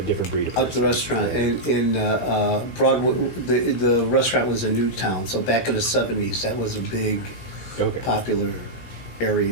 breed of at the person. restaurant. And in Broadway, the restaurant was in Newtown, so back in the 70s, that was a big, Okay. popular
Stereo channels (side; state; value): right; late; 17 ms